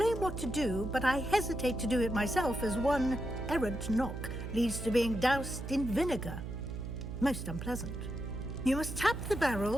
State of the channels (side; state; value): right; noise; hum, 7 dB below the sound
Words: what to do, but I hesitate to do it myself as one errant knock leads to being doused in vinegar. Most unpleasant. You must tap the